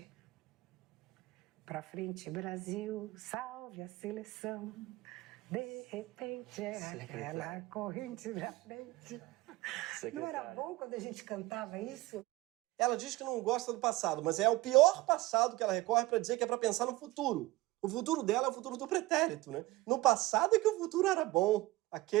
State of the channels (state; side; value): quieter; left; 19.0 dB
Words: Para frente, Brasil, salve a seleção. De repente é aquela corrente da frente. Não era bom quando a gente cantava isso? Ela diz que não gosta do passado, mas é o pior passado que ela recorre para dizer que é para pensar no futuro. O futuro dela é o futuro do pretérito, né? No passado é que o futuro era bom,